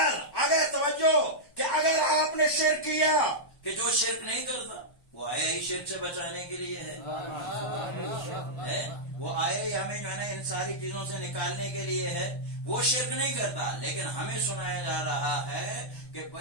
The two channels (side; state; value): right; late; 1.1 ms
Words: توجہ کہ اگر آپ نے شرک کیا، کہ جو شرک نہیں کرتا وہ آیا ہی شرک سے بچانے کے لیے ہے، وہ آیا ہی ہمیں جو ہے نا ان ساری چیزوں سے نکالنے کے لیے ہے، وہ شرک نہیں کرتا. لیکن ہمیں سنایا جا رہا ہے کہ